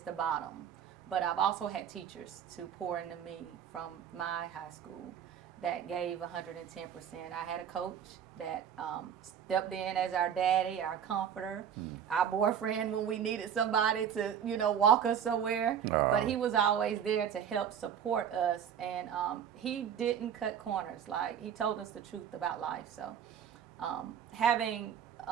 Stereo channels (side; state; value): left; quieter; 8.5 dB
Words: bottom. But I've also had teachers to pour into me from my high school that gave 110%. I had a coach that stepped in as our daddy, our comforter, our boyfriend when we needed somebody to, you know, walk us somewhere. But he was always there to help support us, and he didn't cut corners. Like, he told us the truth about life. So having